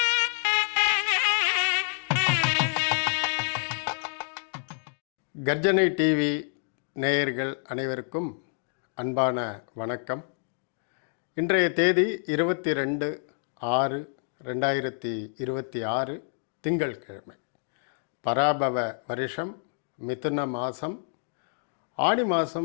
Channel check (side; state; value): right; silent; digital silence